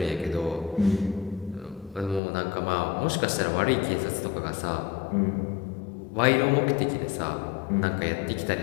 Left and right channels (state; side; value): drops out; right; at 2.2 s